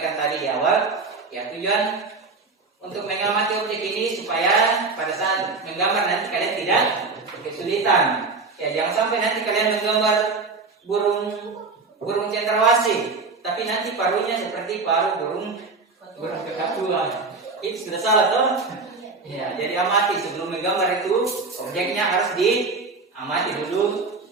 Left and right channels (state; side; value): quieter; left; 4.1 dB